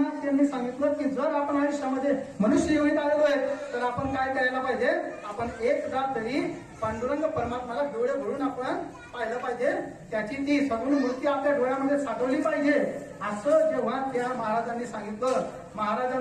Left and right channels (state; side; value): identical; both; correlation 1.00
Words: त्यांनी सांगितलं की जर आपण आयुष्यामध्ये मनुष्य योनीत आलेलो आहे तर आपण काय करायला पाहिजे, आपण एकदा तरी पांडुरंग परमात्माला डोळे भरून आपण पाहिलं पाहिजे, त्याची ती सगुण मूर्ती आपल्या डोळ्यामध्ये साठवली पाहिजे. असं जेव्हा त्या महाराजांनी सांगितलं,